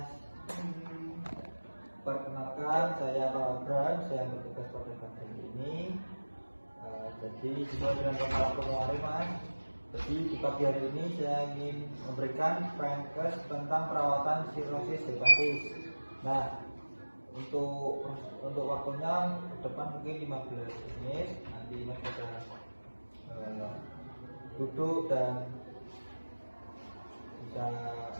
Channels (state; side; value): inverted; both; correlation -1.00